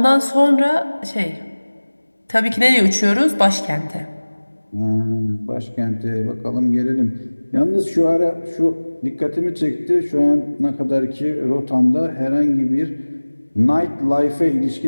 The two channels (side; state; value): both; inverted; correlation -1.00